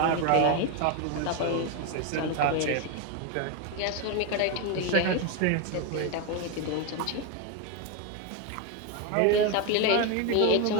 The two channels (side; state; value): both; different; correlation 0.02